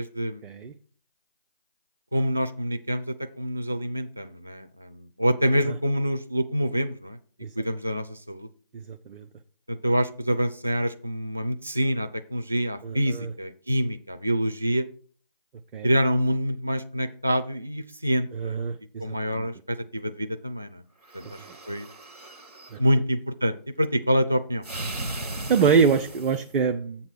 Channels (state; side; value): inverted; both; correlation -0.74